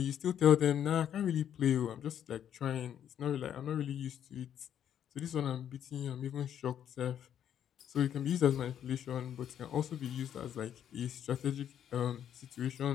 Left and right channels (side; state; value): right; quieter; 9.7 dB